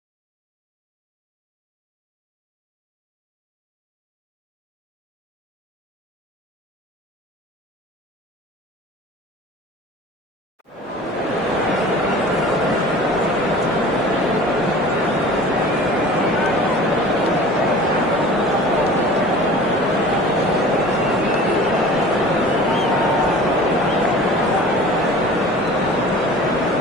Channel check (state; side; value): normal; both; correlation 0.42